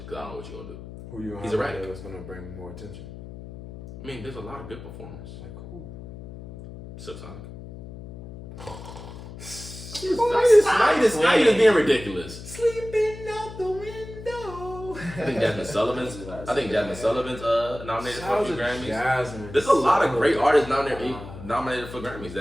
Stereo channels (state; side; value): noise; left; hum, 13 dB below the sound